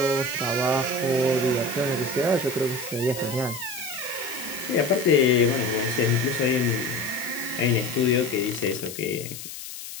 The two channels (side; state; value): left; noise; hiss, 11 dB below the sound